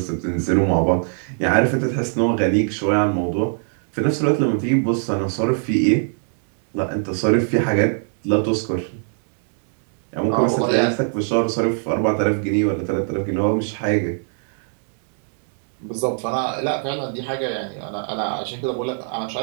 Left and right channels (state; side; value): silent; left; digital silence